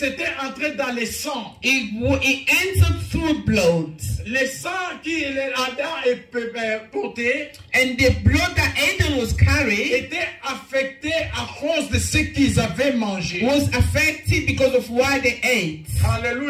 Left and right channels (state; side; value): identical; both; correlation 1.00